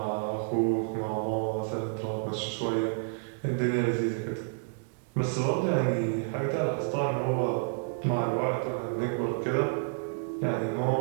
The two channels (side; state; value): left; silent; digital silence